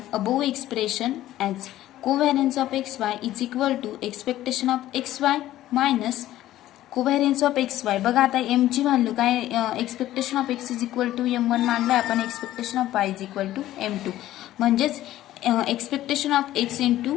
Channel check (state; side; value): quieter; right; 14.2 dB